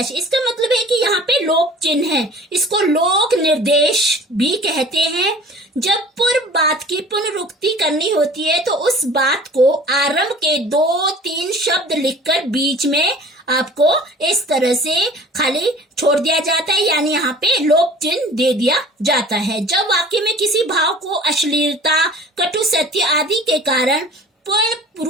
इसका मतलब है कि यहाँ पे लोक चिन्ह है, इसको लोक निर्देश भी कहते हैं। जब पूर्व बात की पुनरुक्ति करनी होती है तो उस बात को आरंभ के 2-3 शब्द लिखकर बीच में आपको इस तरह से खाली छोड़ दिया जाता है, यानी यहाँ पे लोक चिन्ह दे दिया जाता है। जब वाक्य में किसी भाव को अश्लीलता, कटु सत्य आदि के कारण पूर्ण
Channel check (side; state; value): both; normal; correlation 0.46